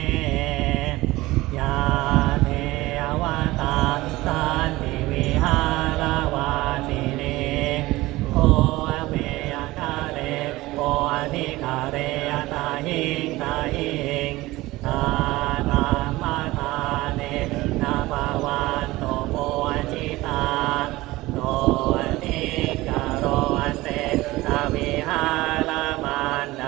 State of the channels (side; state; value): left; quieter; 19.0 dB